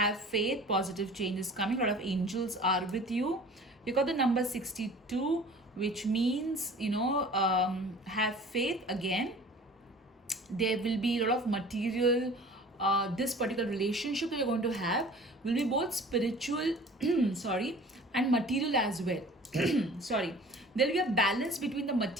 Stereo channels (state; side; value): normal; both; correlation 0.45